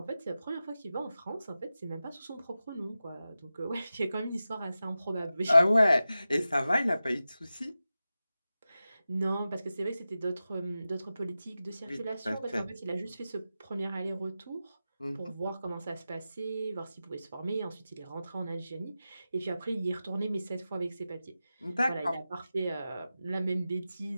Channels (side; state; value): both; inverted; correlation -0.93